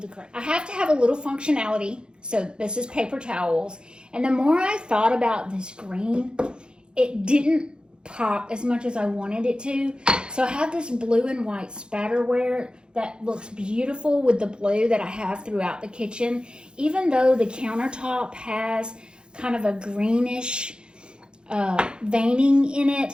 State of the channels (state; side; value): late; left; 0.050 ms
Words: the crate. I have to have a little functionality, so this is paper towels. And the more I thought about this green, it didn't pop as much as I wanted it to. So I have this blue and white spatterware that looks beautiful with the blue that I have throughout the kitchen. Even though the countertop has kind of a greenish veining in